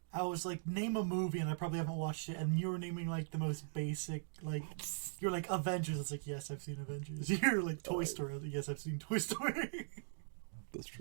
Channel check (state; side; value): silent; left; digital silence